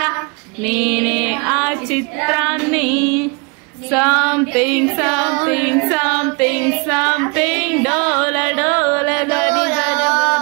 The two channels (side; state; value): left; quieter; 32.5 dB